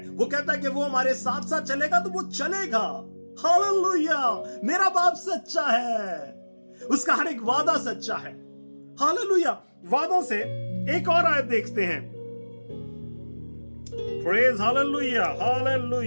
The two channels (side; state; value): both; inverted; correlation -1.00